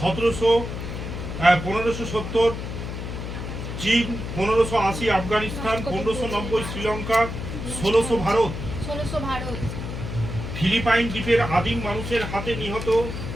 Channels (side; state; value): left; noise; hum, 6 dB below the sound